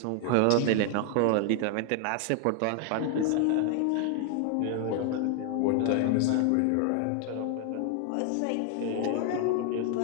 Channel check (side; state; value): both; different; correlation 0.00